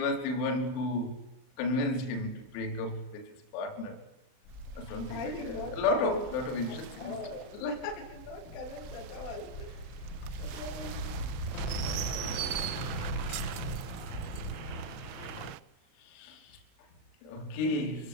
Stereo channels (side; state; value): right; late; 38 ms